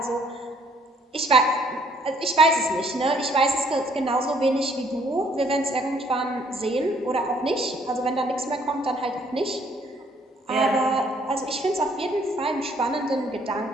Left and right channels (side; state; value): both; normal; correlation 0.64